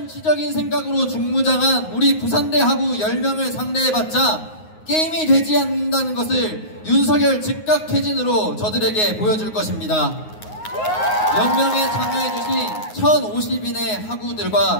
생각으로 중무장한 우리 부산대 학우 10명을 상대해봤자 게임이 되지 않는다는 것을 윤석열 즉각 퇴진으로 저들에게 보여줄 것입니다. 연명에 참여해주신 1050인의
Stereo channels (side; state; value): right; late; 9.5 ms